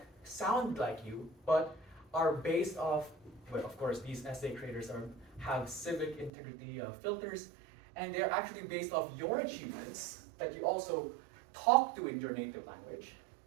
sound like you, but are based off, well, of course, these essay creators have civic integrity filters, and they're actually based off your achievements that you also talk to in your native language.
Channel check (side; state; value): left; drops out; at 6.3 s